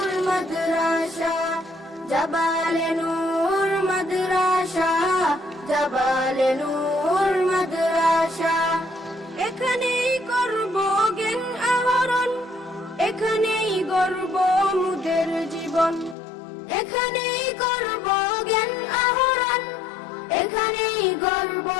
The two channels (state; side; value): drops out; right; at 16.2 s